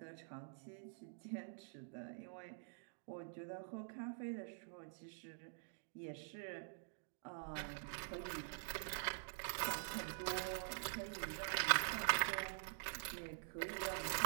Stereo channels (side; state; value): left; silent; digital silence